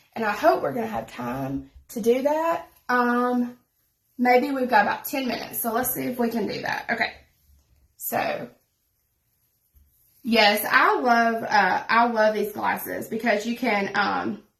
And I hope we're going to have time to do that. Maybe we've got about 10 minutes. So let's see if we can do that. Okay. So, yes, I love these glasses because you can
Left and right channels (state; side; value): identical; both; correlation 1.00